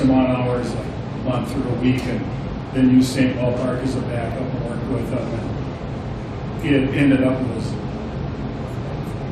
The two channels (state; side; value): identical; both; correlation 1.00